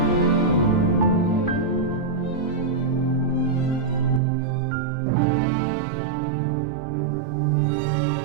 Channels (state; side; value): drops out; left; at 4.2 s